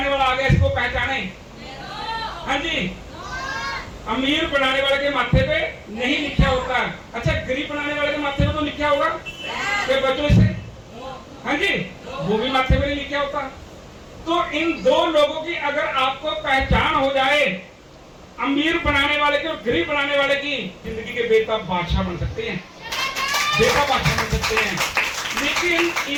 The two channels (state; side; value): identical; both; correlation 1.00